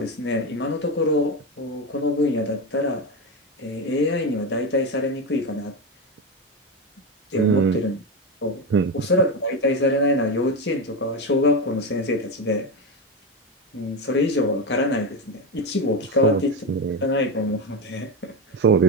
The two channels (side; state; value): both; normal; correlation 0.15